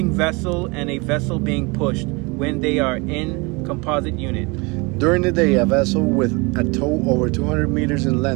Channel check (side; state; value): left; quieter; 27.6 dB